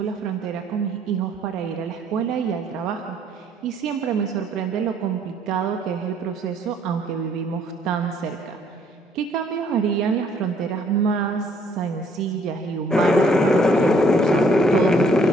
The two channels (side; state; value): both; normal; correlation 0.63